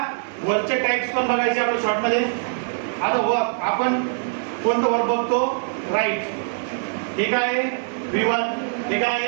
वरचे टाइप्स पण बघायचे आपण शॉर्ट मध्ये. आता वर आपण कोणतं वर बघतो? राईट. हे काय आहे? V1. हे काय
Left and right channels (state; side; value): silent; left; 59 dB below the other